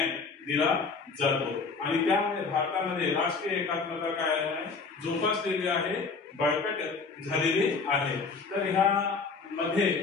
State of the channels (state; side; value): quieter; right; 4.7 dB